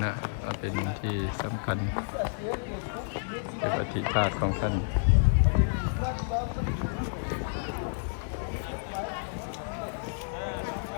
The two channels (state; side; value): silent; right; digital silence